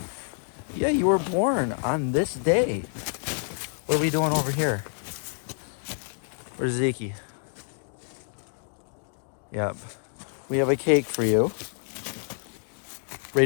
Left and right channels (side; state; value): right; silent; 60 dB below the other